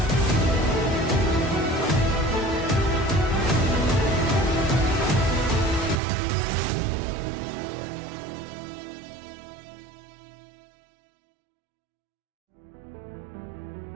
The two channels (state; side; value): drops out; left; at 6.0 s